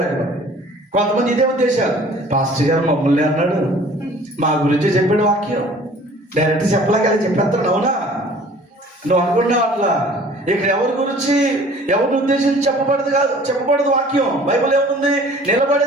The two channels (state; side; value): normal; both; correlation 0.50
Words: కదా. కొంతమంది ఇదే ఉద్దేశాలు, పాస్టర్ గారు మమ్మల్ని అన్నాడు, మా గురించి చెప్పాడు వాక్యం, డైరెక్ట్ చెప్పలేక చెప్పేస్తాడు. అవునా? నువ్వు అనుకున్నావు అట్లా. ఇక్కడ ఎవరిని ఉద్దేశించి చెప్పబడదు వాక్యం. బైబిల్ ఏముంది?